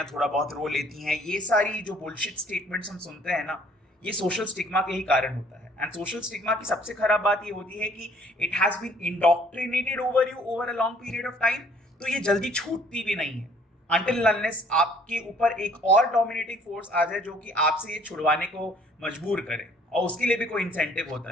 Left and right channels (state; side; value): normal; both; correlation 0.59